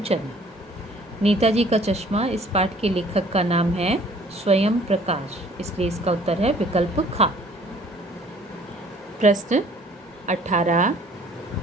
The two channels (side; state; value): both; normal; correlation 0.55